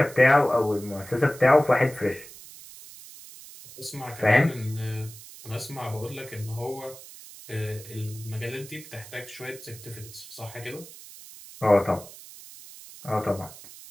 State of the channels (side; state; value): right; noise; hiss, 17 dB below the sound